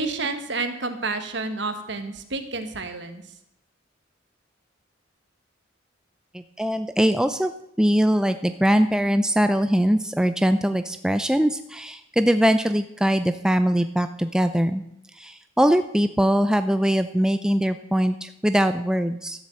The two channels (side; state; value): both; normal; correlation 0.91